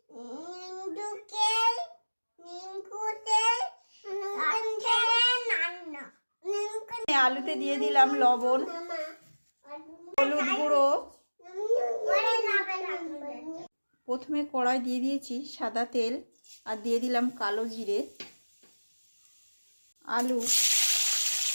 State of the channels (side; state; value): both; inverted; correlation -1.00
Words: আলুতে দিয়ে দিলাম লবণ, হলুদ গুঁড়ো, প্রথমে কড়াই দিয়ে দিয়েছি সাদা তেল, আর দিয়ে দিলাম কালো জিরে। আলু